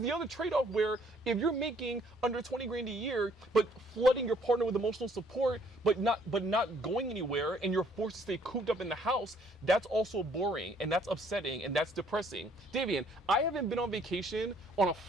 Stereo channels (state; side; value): normal; both; correlation 0.63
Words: other trade-off where if you're making under $20,000 a year, but flooding your partner with emotional support, but not going anywhere, and you're forced to stay cooped up in the house, that's also boring, and that's upsetting, and that's depressing. Davian, I haven't been on vacation on a